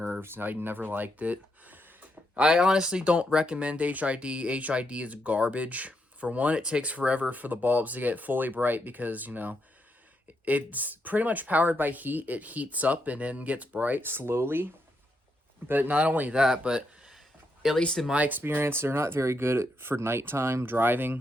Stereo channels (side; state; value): both; normal; correlation 0.80